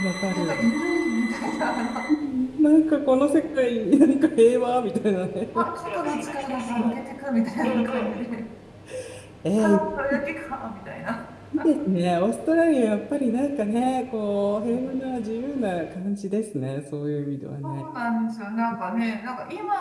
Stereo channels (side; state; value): both; identical; correlation 1.00